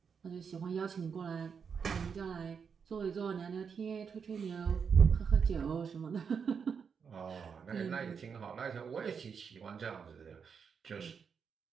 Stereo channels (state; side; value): quieter; left; 6.4 dB